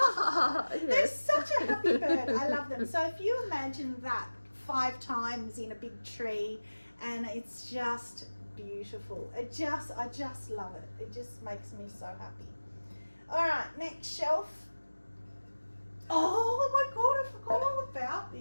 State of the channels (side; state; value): both; inverted; correlation -1.00